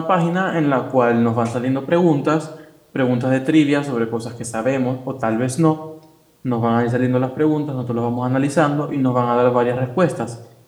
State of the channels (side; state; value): both; identical; correlation 1.00